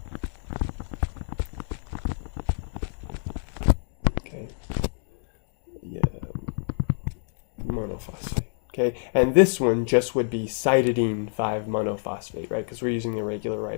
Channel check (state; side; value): silent; right; 60 dB below the other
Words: Okay. Yeah. Monophosphate. Okay, and this one just would be cytidine 5 monophosphate, right? Because we're using the regular